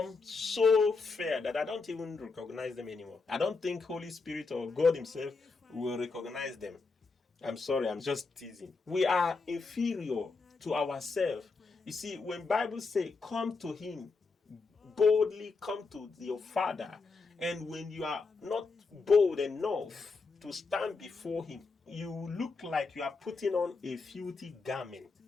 so fair that I don't even recognize them anymore. I don't think Holy Spirit or God himself will recognize them. I'm sorry, I'm just teasing. We are inferior to ourselves. You see, when Bible say, come to him, boldly come to your Father, and when you are not bold enough to stand before him, you look like you are putting on a filthy garment.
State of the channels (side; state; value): right; quieter; 4.2 dB